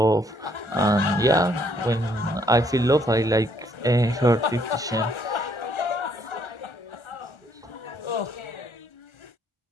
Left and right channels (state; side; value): normal; both; correlation 0.68